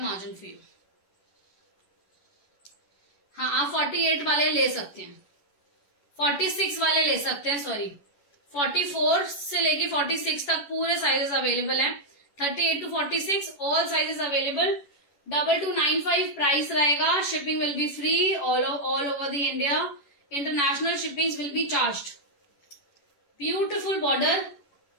margin for you. हाँ, आप 48 वाले ले सकते हैं, 46 वाले ले सकते हैं. सॉरी 44 से लेके 46 तक पूरे साइजेस अवेलेबल हैं. 38 to 46 all sizes available. 2295 price रहेगा. Shipping will be free all over the India. International shipping will be charged. Beautiful border.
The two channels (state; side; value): late; right; 11 ms